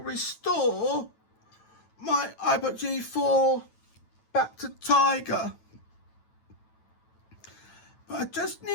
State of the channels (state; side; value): late; right; 9.1 ms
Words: my iBook G4 back to Tiger. But I just